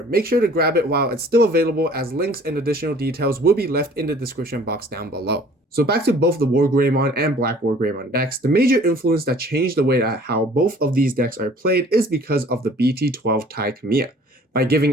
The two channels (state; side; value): normal; both; correlation 0.52